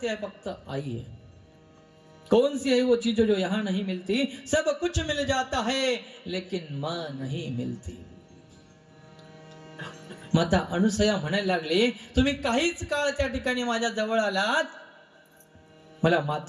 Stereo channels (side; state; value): both; identical; correlation 1.00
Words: ते फक्त आई है. कौन सी है वो चीज जो यहाँ नहीं मिलती, सब कुछ मिल जाता है लेकिन माँ नहीं मिलती. माता अनसुया म्हणायला लागली, तुम्ही काहीच काळ त्या ठिकाणी माझ्या जवळ आलात, मला